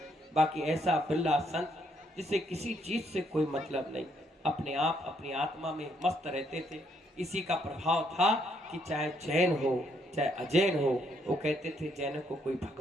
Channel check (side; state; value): both; normal; correlation 0.72